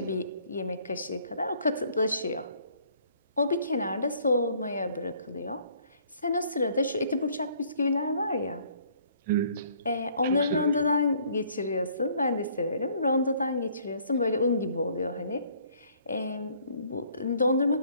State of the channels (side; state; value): both; inverted; correlation -0.61